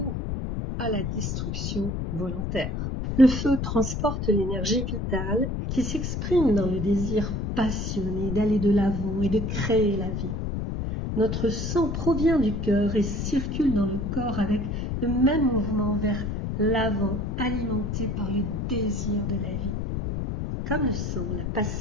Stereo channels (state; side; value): noise; left; rumble, 2 dB below the sound